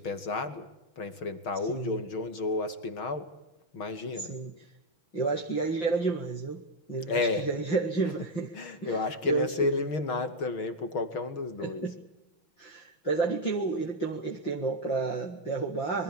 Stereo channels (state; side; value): late; right; 6.3 ms